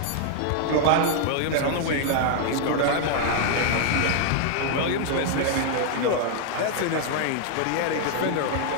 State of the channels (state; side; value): different; both; correlation 0.00